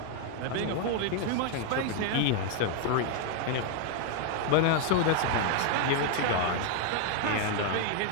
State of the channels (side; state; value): both; different; correlation 0.00